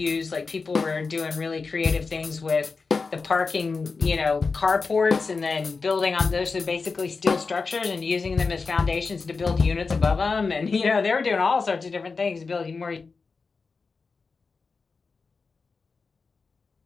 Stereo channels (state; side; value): quieter; right; 4.5 dB